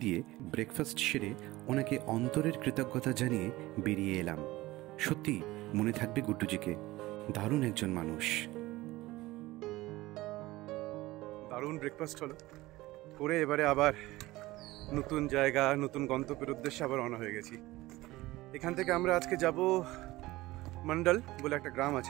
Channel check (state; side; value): quieter; left; 18.7 dB